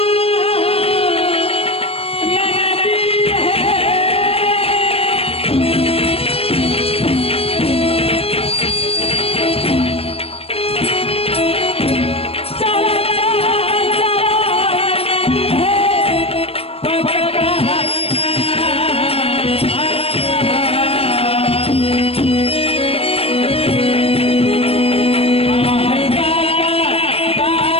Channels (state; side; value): late; right; 0.28 ms